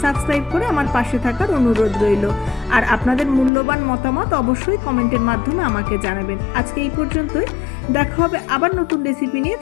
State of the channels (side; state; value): right; drops out; at 3.5 s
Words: সাবস্ক্রাইব করে আমার পাশে থাকার অনুরোধ রইল। আর আপনাদের মূল্যবান মতামত অবশ্যই কমেন্টের মাধ্যমে আমাকে জানাবেন। আজকে এই পর্যন্তই, দেখা হবে আবার নতুন রেসিপি নিয়ে।